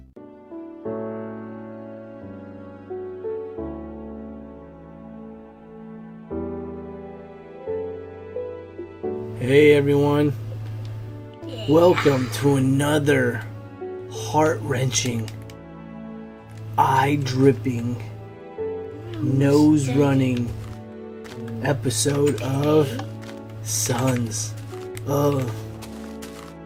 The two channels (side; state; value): both; identical; correlation 1.00